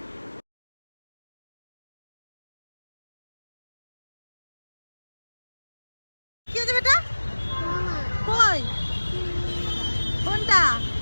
কি হয়েছে বেটা? কই? কোনটা?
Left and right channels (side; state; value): both; inverted; correlation -1.00